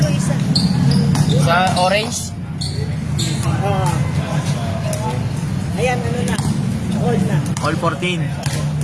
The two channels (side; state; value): both; identical; correlation 1.00